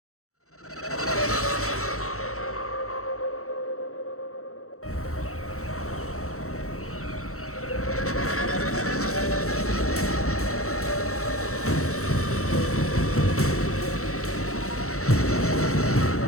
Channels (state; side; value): late; right; 0.64 ms